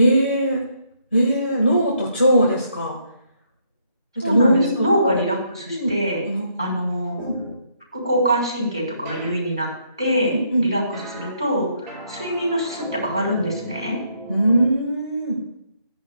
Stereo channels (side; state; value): both; inverted; correlation -0.72